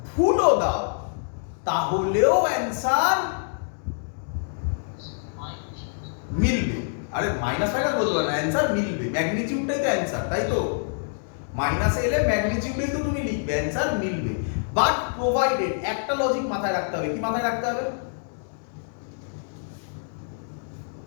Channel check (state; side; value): silent; right; digital silence